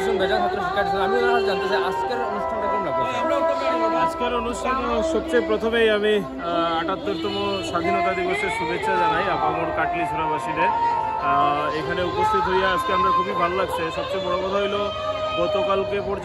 বেজান ছাত্র শিক্ষা দিচ্ছেন। আমি জানতে চাই আজকের অনুষ্ঠানটা কেমন লাগবে? আজকের অনুষ্ঠান সবচেয়ে প্রথমেই আমি ৭৮তম স্বাধীনতা দিবসের শুভেচ্ছা জানাই আপামর কাটলিছড়াবাসীদের। এখানে উপস্থিত হইয়া আজকে আমরা খুবই ভালো লাগছে। সবচেয়ে বড় কথা হইলো গতকালকে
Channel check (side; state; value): both; identical; correlation 1.00